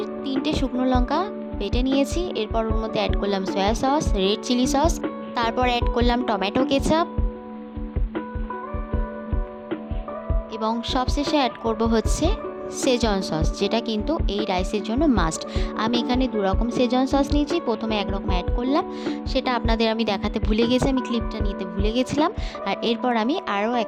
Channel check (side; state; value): both; identical; correlation 1.00